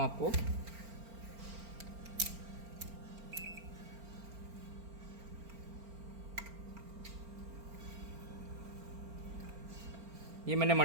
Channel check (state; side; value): late; left; 4.4 ms